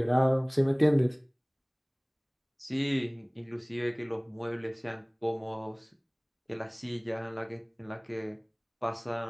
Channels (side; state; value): both; identical; correlation 1.00